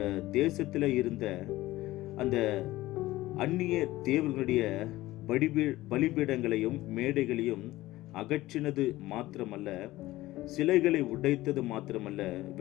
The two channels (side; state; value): right; quieter; 17.3 dB